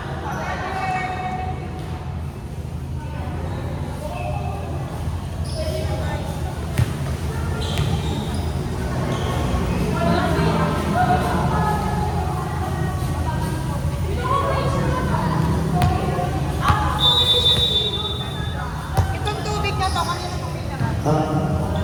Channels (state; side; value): identical; both; correlation 1.00